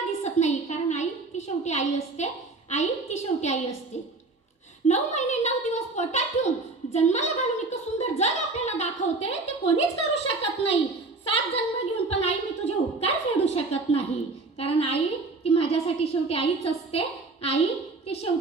दिसत नाही? कारण आई ती शेवटी आई असते, आई ती शेवटी आई असते। 9 महिने 9 दिवस पोटात ठेवून जन्माला घालून इतकं सुंदर जग आपल्याला दाखवते, ते कोणीच करू शकत नाही। 7 जन्म घेऊन पण आई मी तुझे उपकार फेडू शकत नाही, कारण आई ती माझ्यासाठी शेवटी आईच असते, आई ती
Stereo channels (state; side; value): quieter; left; 3.6 dB